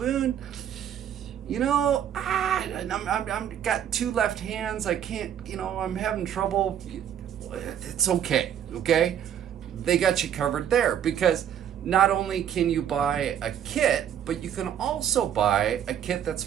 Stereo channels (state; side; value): quieter; left; 9.6 dB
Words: you know, I'm got two left hands. I can't, you know, I'm having trouble. It's okay, okay? They got you covered there, because not only can you buy a kit, but you can also buy a kit that's